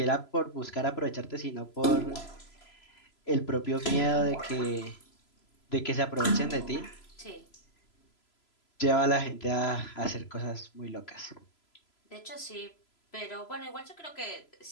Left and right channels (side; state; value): right; late; 3.0 ms